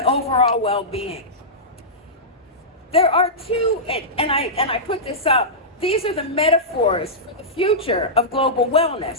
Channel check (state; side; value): normal; both; correlation -0.13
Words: well-being. There are two, and I put this up, these are the metaphors for the future of global